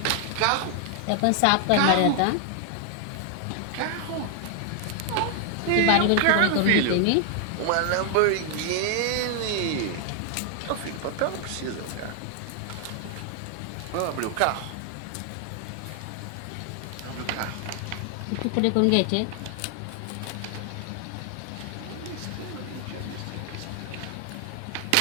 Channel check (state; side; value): different; both; correlation 0.00